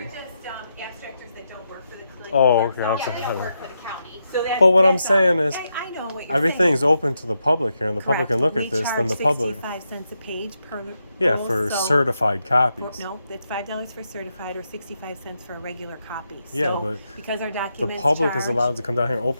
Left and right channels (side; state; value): both; inverted; correlation -0.84